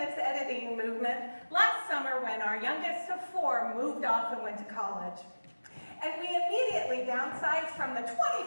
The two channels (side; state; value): both; inverted; correlation -1.00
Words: editing movement last summer when our youngest of 4 moved off and went to college. And we immediately downsized from the